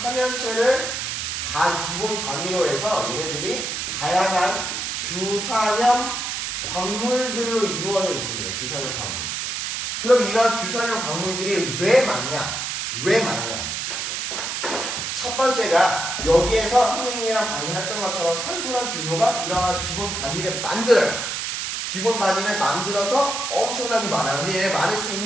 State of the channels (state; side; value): noise; right; hiss, 3 dB below the sound